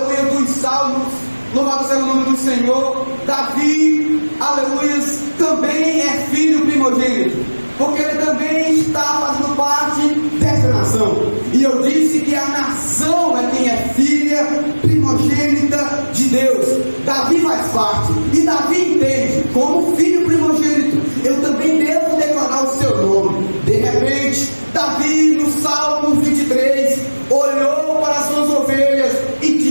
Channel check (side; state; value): both; inverted; correlation -1.00